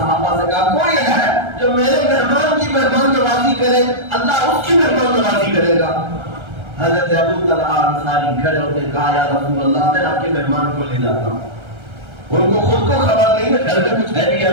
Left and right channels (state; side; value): late; left; 1.3 ms